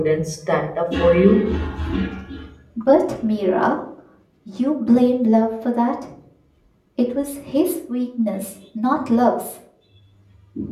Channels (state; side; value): identical; both; correlation 1.00